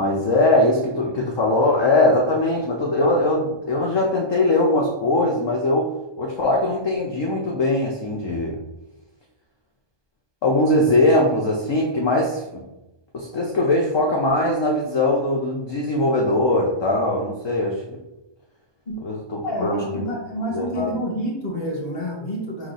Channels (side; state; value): right; late; 1.2 ms